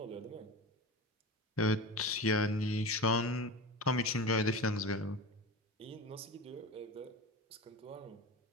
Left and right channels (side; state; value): both; normal; correlation 0.28